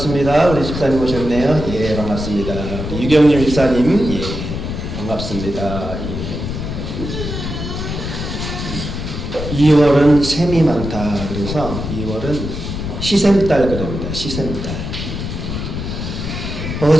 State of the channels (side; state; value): left; noise; rumble, 5 dB below the sound